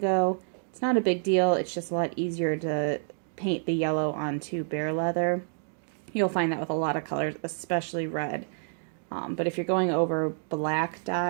it's not a big deal. It's just a lot easier to paint the yellow onto bare leather. You'll find that with a lot of colors, especially red. But if you're going over black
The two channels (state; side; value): silent; left; digital silence